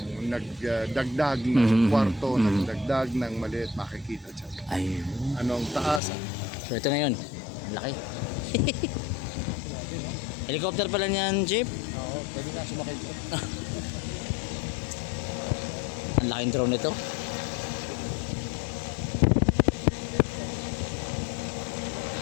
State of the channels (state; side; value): drops out; right; at 6.0 s